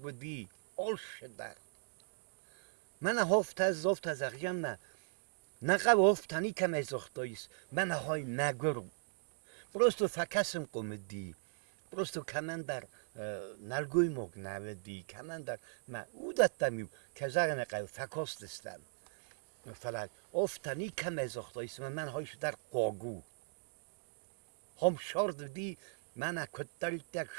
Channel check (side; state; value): left; silent; digital silence